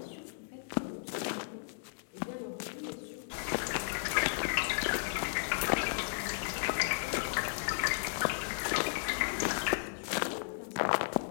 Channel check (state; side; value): silent; right; digital silence